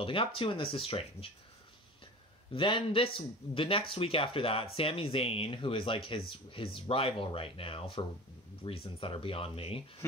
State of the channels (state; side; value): normal; both; correlation 0.36